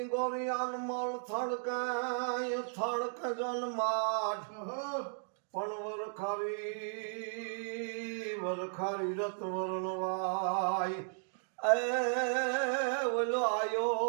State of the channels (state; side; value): silent; left; digital silence